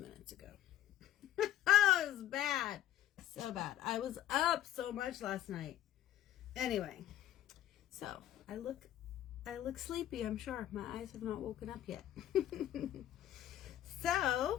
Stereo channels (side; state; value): right; quieter; 12.3 dB